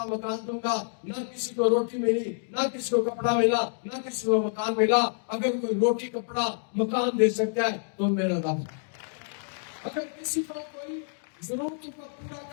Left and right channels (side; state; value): right; silent; digital silence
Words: مکان دوں گا. نہ کسی کو روٹی ملی، نہ کسی کو کپڑا ملا، نہ کسی کو مکان ملا. اگر کوئی روٹی کپڑا مکان دے سکتا ہے تو میرا رب. اگر کسی کو کوئی ضرورتوں کو پورا